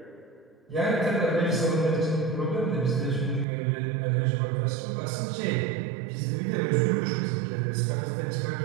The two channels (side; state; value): left; drops out; at 3.5 s